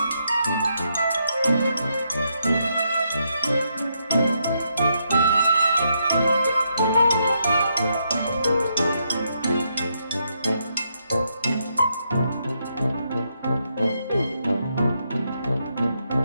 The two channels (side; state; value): both; inverted; correlation -0.79